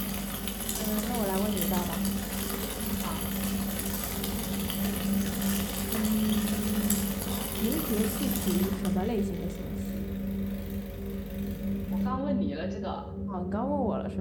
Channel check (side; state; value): both; identical; correlation 1.00